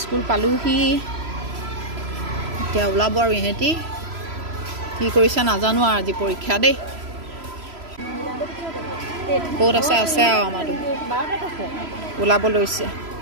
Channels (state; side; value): late; left; 3.0 ms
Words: স্কুল পালোহি এতিয়া ওলাব আৰু ইহঁতি কি কৰিছে নাজানো আৰু আজি পৰীক্ষা দেই ক'ত আছে আৰু আমাৰতো ওলাব লৈছে